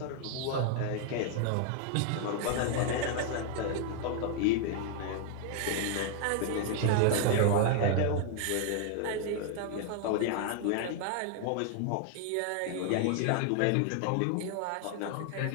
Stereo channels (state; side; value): different; both; correlation 0.00